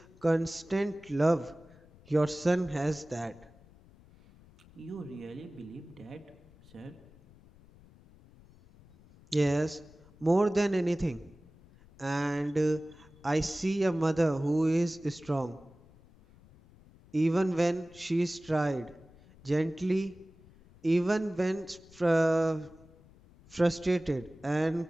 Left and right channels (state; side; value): noise; left; rumble, 25 dB below the sound